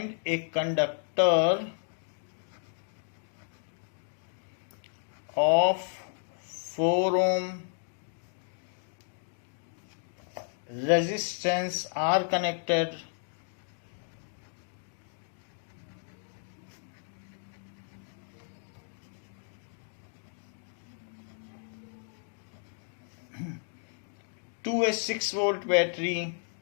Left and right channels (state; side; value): silent; right; digital silence